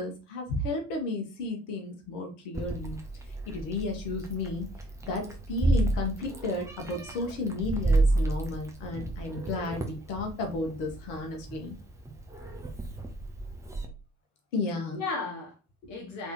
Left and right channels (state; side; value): normal; both; correlation 0.57